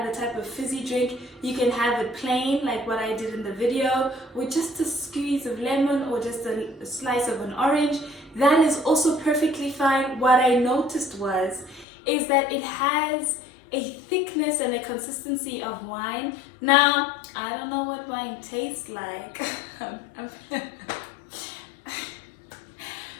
type of fizzy drink, You can have it plain like what I did in the video, with just a squeeze of lemon or just a slice of an orange. That is also perfectly fine. What I noticed is that it has a thickness and a consistency of wine. Now, I don't know what wine tastes like.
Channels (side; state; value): right; drops out; at 11.9 s